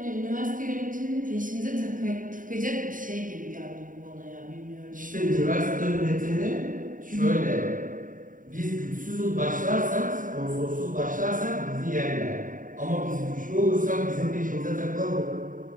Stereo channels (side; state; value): left; late; 0.39 ms